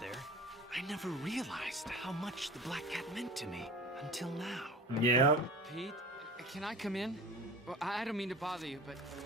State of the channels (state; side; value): normal; both; correlation 0.36